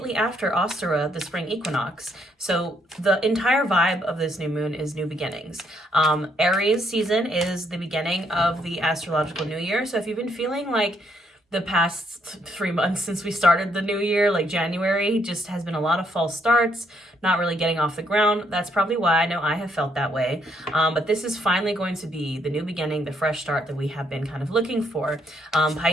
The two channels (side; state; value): both; normal; correlation 0.72